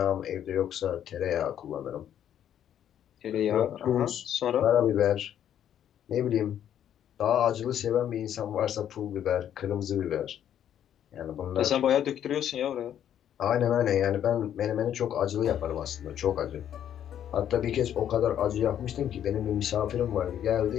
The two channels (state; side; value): quieter; right; 10.1 dB